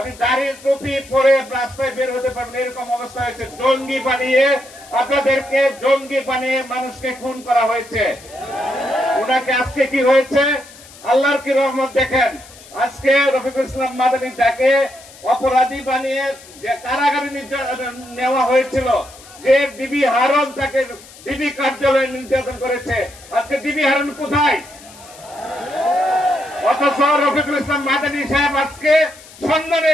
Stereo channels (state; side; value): noise; left; hiss, 21 dB below the sound